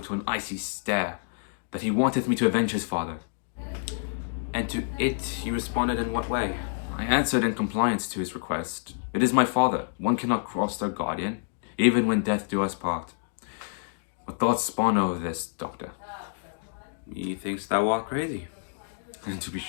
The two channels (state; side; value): silent; right; digital silence